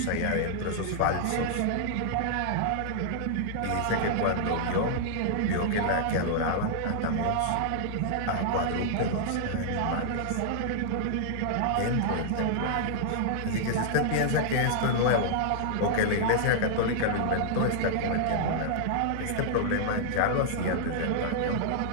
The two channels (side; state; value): both; different; correlation -0.01